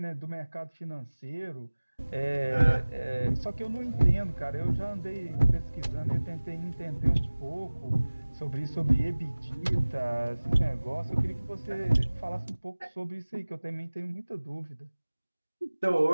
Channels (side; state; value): both; inverted; correlation -1.00